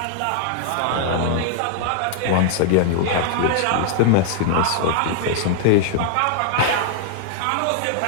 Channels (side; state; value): both; different; correlation 0.00